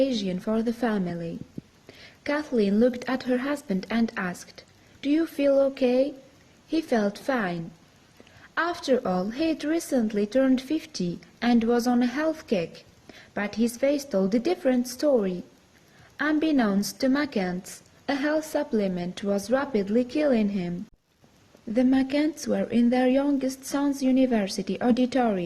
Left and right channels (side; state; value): both; identical; correlation 1.00